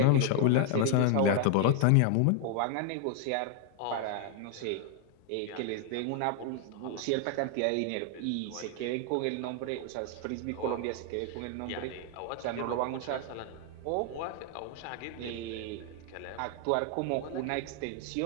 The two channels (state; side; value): different; both; correlation 0.00